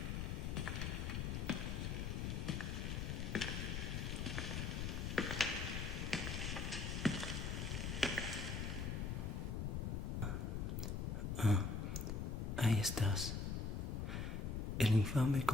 Ahí estás. El infame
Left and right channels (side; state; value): left; noise; rumble, 1 dB below the sound